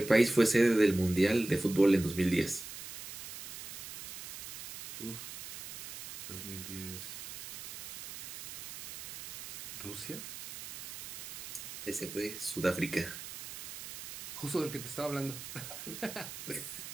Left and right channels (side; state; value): right; noise; hiss, 9 dB below the sound